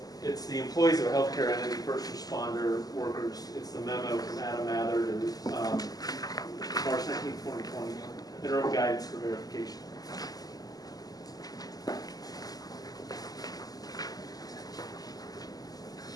the employees of a healthcare entity, first responder, workers. It's the memo from Adam Mather to March 19, 2020, interim guidance for verification.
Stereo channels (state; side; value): late; right; 0.18 ms